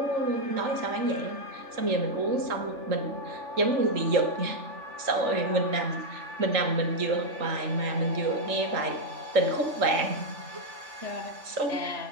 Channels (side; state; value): left; late; 3.4 ms